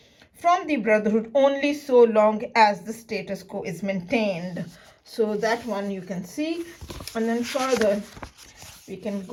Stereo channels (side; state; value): both; identical; correlation 1.00